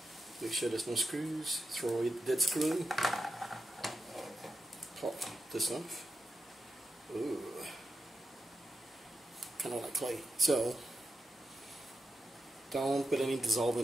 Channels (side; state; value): both; normal; correlation 0.88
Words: Make sure there's no screws. Throw away the dead screw. Pop this off. Ooh. Kind of like clay. So, don't put any